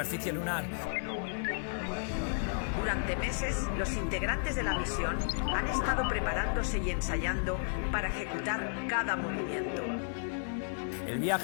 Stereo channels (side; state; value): right; silent; digital silence